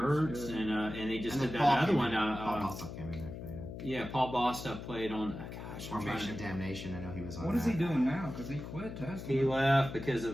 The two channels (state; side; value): noise; left; hum, 9 dB below the sound